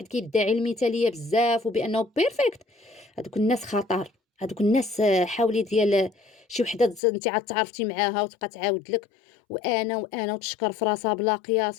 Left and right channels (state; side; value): drops out; right; at 7.0 s